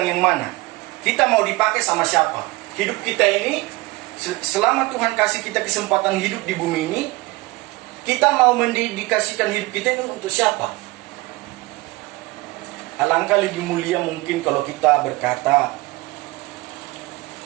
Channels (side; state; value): left; quieter; 21.7 dB